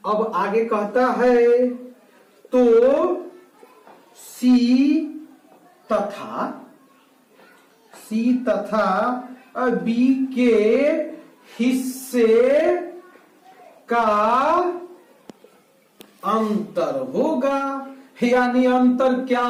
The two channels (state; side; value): identical; both; correlation 1.00